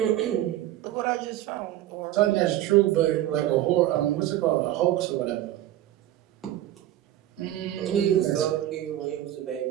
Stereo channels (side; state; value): left; quieter; 13.4 dB